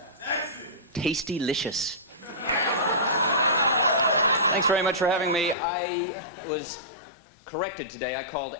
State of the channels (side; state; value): right; drops out; at 5.6 s